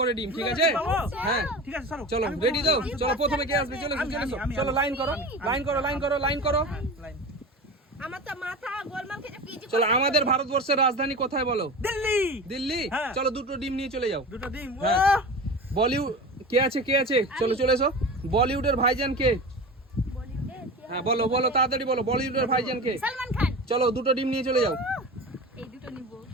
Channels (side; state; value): both; normal; correlation 0.31